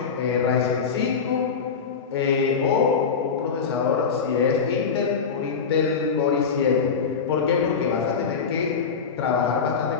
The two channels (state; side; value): quieter; right; 5.8 dB